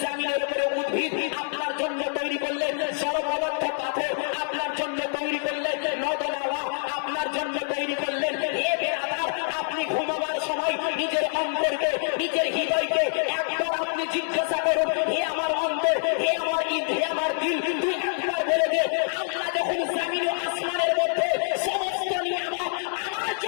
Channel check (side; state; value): right; silent; digital silence